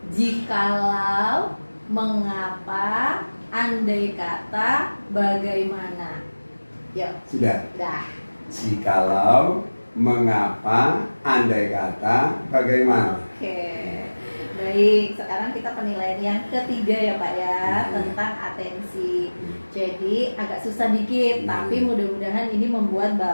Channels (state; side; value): inverted; both; correlation -1.00